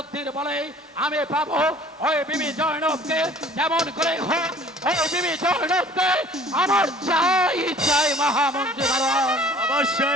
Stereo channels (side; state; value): both; normal; correlation 0.50